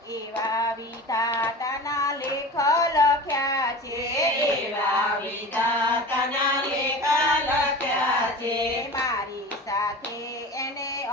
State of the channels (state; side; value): normal; both; correlation 0.34